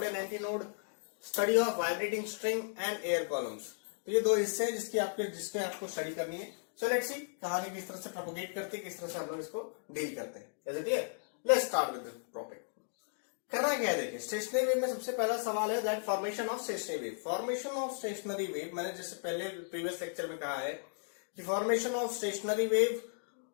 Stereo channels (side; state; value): right; silent; digital silence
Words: and anti node, study of vibrating string and air columns. तो ये दो हिस्से हैं जिसके आपको स्टडी करनी है। सो लेट्स सी कहानी किस तरह से प्रोपोगेट करती है, किस तरह से हम लोग इसको डील करते हैं। Is it clear? Let's start with the topic. करना क्या है, देखिए स्टेशनरी वेव में सबसे पहला सवाल है that formation of stationary wave. Formation of stationary wave, मैंने जैसे पहले प्रीवियस लेक्चर में कहा है कि फॉर्मेशन ऑफ स्टेशनरी वेव